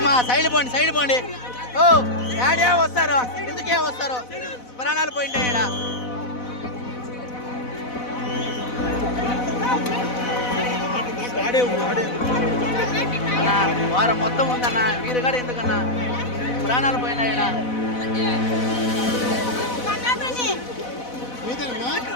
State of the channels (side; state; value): right; late; 4.0 ms